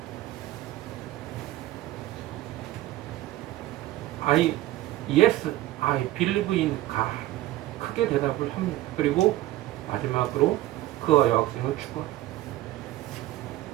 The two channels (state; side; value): quieter; left; 15.7 dB